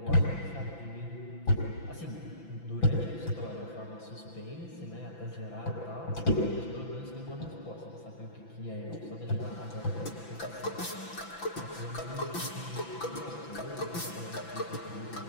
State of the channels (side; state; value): right; late; 6.0 ms